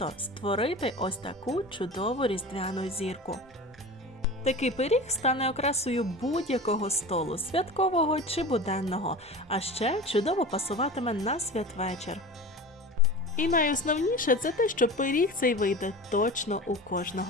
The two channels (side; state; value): both; normal; correlation 0.33